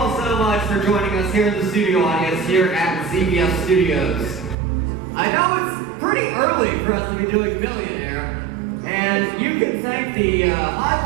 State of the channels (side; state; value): left; drops out; at 4.5 s